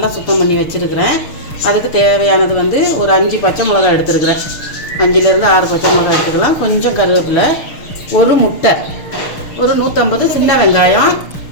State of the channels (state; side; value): late; right; 6.5 ms